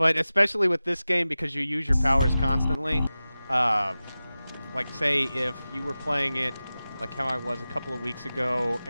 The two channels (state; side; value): inverted; both; correlation -0.95